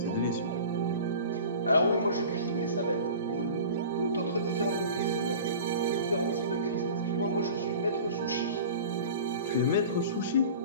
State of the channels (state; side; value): inverted; both; correlation -0.39